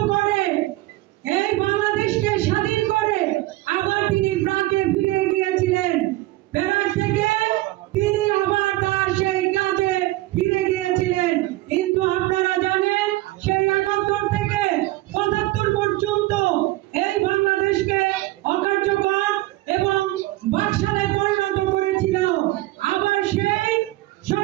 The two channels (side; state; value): left; quieter; 18.3 dB